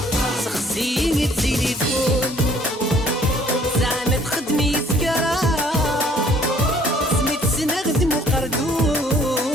سخسيني التليفون زعما تخدمي سكرة سميت سنخدم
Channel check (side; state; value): both; normal; correlation 0.59